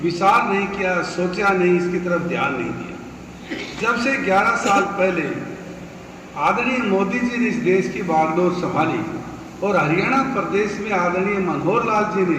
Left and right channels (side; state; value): both; identical; correlation 1.00